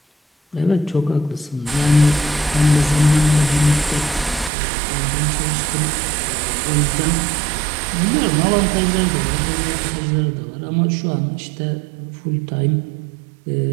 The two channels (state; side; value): drops out; left; at 4.5 s